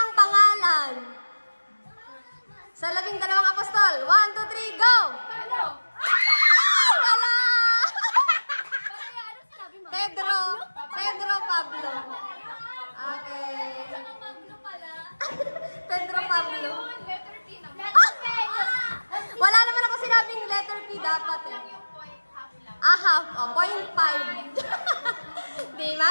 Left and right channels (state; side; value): inverted; both; correlation -1.00